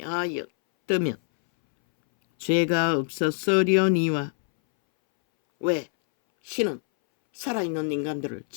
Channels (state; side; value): silent; right; 62 dB below the other